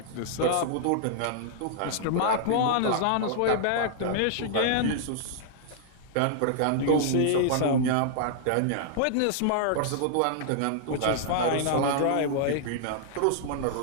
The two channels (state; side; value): different; both; correlation -0.01